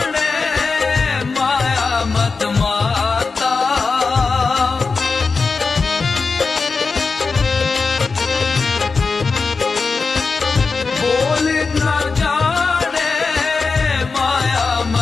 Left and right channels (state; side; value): quieter; right; 4.5 dB